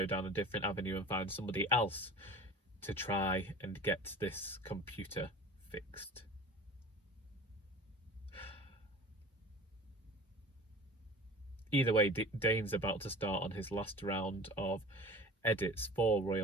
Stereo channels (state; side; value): normal; both; correlation 0.39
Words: down a different avenue and find somebody else to try and get this computer fixed. Either way, Dane's about to start on his last round of edits for